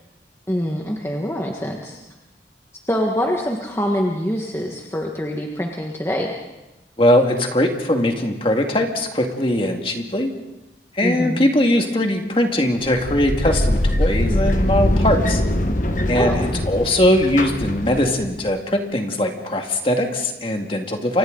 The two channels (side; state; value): both; normal; correlation 0.67